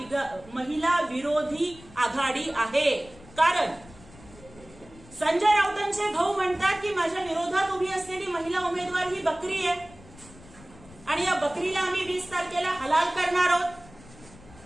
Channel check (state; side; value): noise; left; rumble, 21 dB below the sound